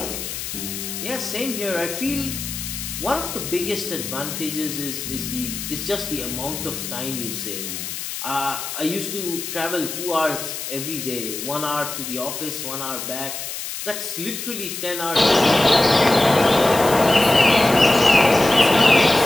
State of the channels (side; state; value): left; noise; hiss, 7 dB below the sound